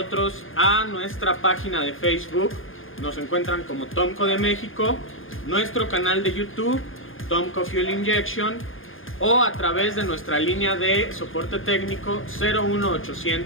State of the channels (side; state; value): right; late; 0.59 ms